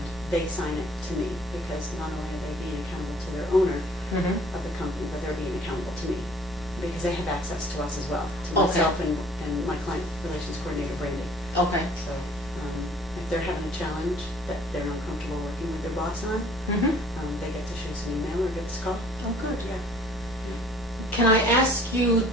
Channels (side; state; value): left; noise; hum, 22 dB below the sound